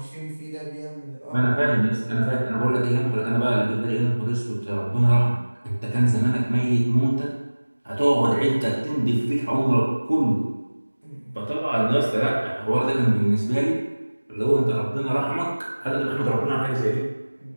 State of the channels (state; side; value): inverted; both; correlation -1.00